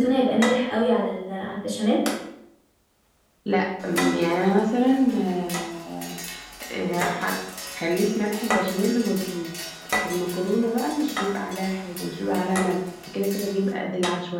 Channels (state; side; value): identical; both; correlation 1.00